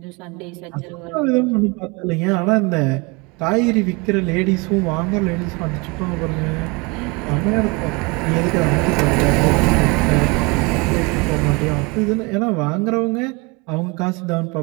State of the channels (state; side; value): quieter; left; 27.5 dB